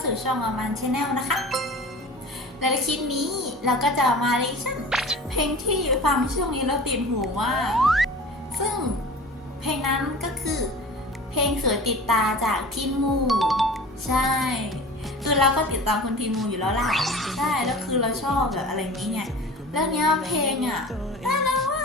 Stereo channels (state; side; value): normal; both; correlation 0.38